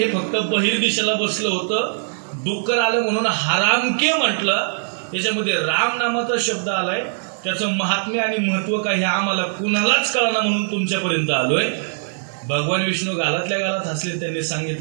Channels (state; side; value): silent; left; 60 dB below the other